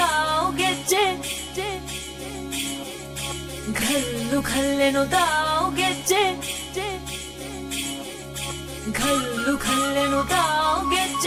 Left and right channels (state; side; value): identical; both; correlation 1.00